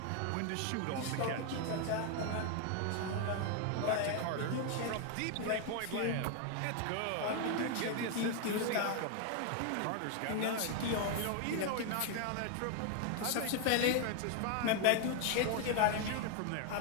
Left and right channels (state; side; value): different; both; correlation 0.00